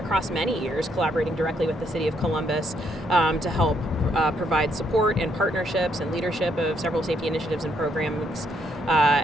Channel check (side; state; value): both; normal; correlation 0.73